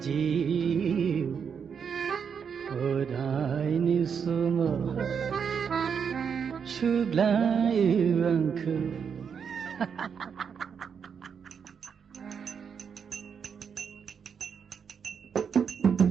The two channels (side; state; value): left; quieter; 6.8 dB